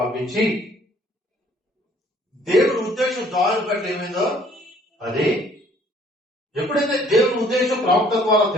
పంపించి దేవుని ఉద్దేశం దాని పట్ల ఏమైందో అది ఎప్పుడైతే దేవుని ఉద్దేశం ప్రవక్త ద్వారా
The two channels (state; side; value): normal; both; correlation 0.59